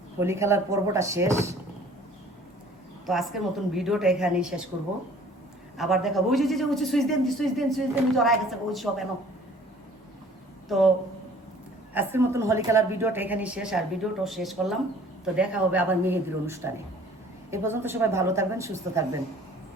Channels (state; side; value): normal; both; correlation 0.52